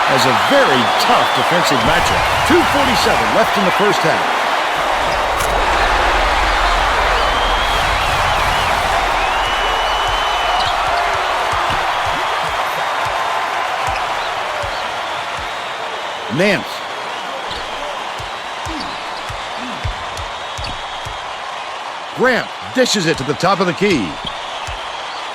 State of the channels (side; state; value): both; identical; correlation 1.00